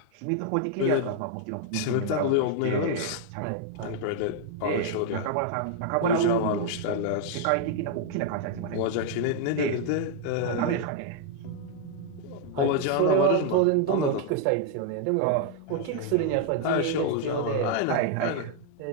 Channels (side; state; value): both; different; correlation 0.00